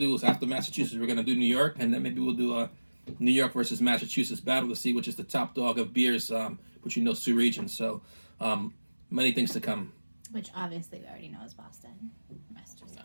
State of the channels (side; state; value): both; inverted; correlation -1.00